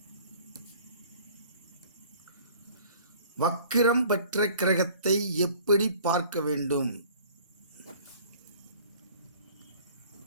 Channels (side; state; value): both; inverted; correlation -0.50